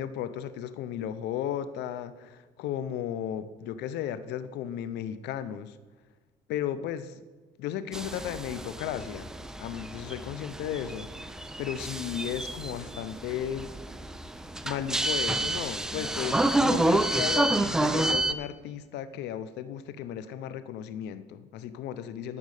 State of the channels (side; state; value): both; normal; correlation 0.61